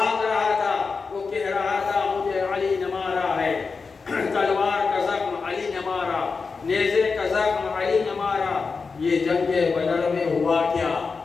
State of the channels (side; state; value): right; quieter; 4.8 dB